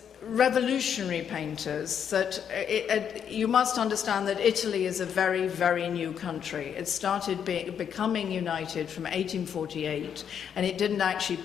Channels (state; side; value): quieter; right; 8.2 dB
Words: revolutionary painters that you must understand that Italy is a very, very new country. It started becoming united from 1848, and it didn't actually